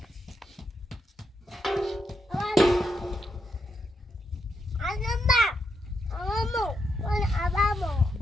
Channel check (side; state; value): both; normal; correlation 0.81